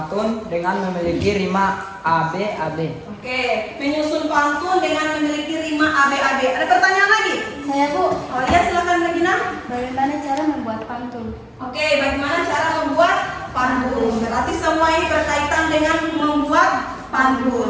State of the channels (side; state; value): both; identical; correlation 1.00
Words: dengan memiliki rima AB. Oke, menyusun pantun dengan memiliki rima AB. Ada pertanyaan lagi? Saya Bu, Oh iya, silakan Regina. bagaimana cara membuat pantun? Oke, bagaimana cara membuat pantun? Berarti semua ini berkaitan dengan membuat